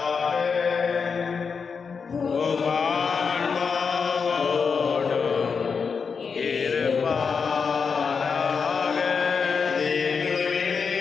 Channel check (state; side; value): quieter; right; 5.6 dB